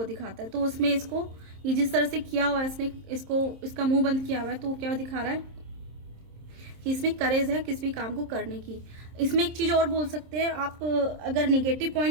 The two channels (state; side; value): late; left; 26 ms